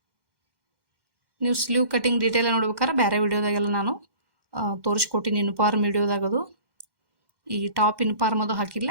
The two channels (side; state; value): left; late; 2.1 ms